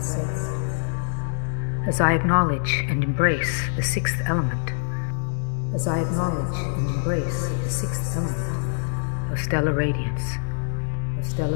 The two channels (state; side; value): silent; right; digital silence